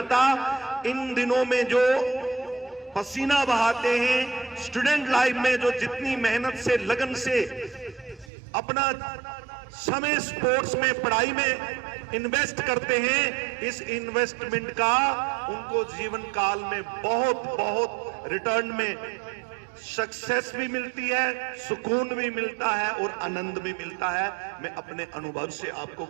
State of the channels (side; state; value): left; drops out; at 8.3 s